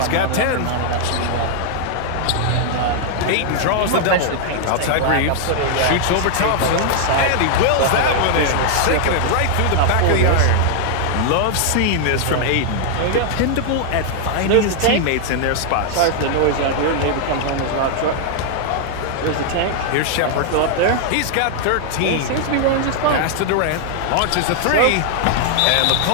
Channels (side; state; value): both; different; correlation 0.00